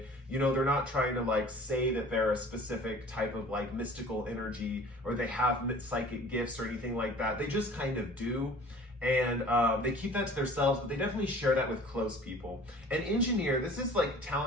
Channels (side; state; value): both; normal; correlation 0.47